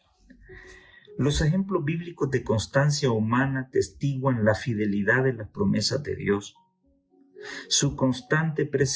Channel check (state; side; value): identical; both; correlation 1.00